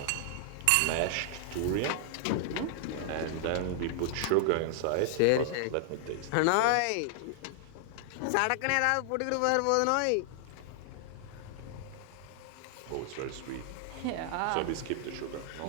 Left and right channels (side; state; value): both; different; correlation -0.01